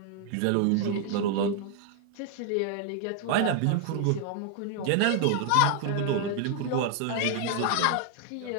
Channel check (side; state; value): both; different; correlation 0.00